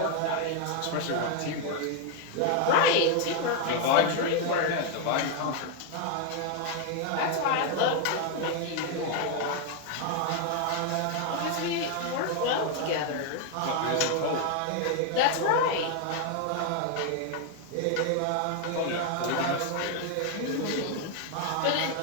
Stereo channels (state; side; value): different; both; correlation 0.01